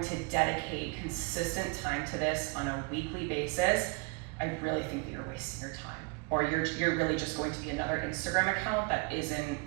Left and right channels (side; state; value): left; quieter; 30.6 dB